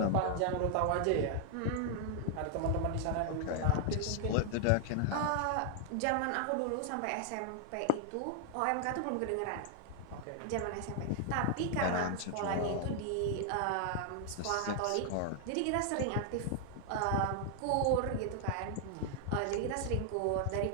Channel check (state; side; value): different; both; correlation 0.00